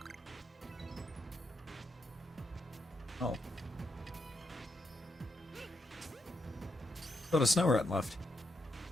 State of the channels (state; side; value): normal; both; correlation 0.80